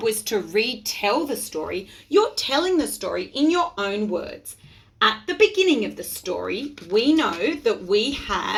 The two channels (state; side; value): identical; both; correlation 1.00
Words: was to retell the story, you're telling the story in your own words. At the beginning of the story, we know that we